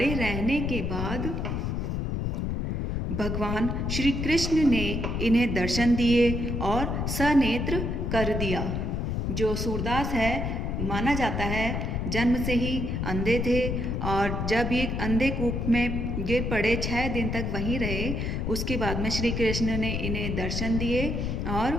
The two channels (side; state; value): left; noise; rumble, 1 dB below the sound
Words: रहने के बाद भगवान श्री कृष्ण ने इन्हें दर्शन दिए और सनेत्र कर दिया। जो सूरदास है माना जाता है जन्म से ही अंधे थे, और जब ये अंधे कूप में गिर पड़े 6 दिन तक वहीं रहे, उसके बाद में श्री कृष्ण ने इन्हें दर्शन दिए और